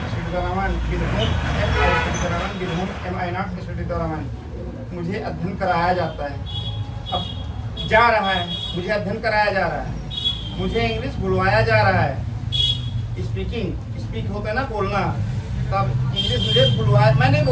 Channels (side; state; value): both; identical; correlation 1.00